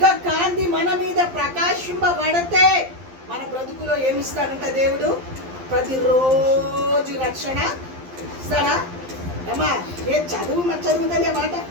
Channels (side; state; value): left; late; 12 ms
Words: కాంతి మన మీద ప్రకాశింపబడితే మన బ్రతుకులో ఏమిస్తాడంట దేవుడు? ప్రతిరోజు రక్షణ ఇస్తాడా? అమ్మా ఏ చదువుతుంది మాట.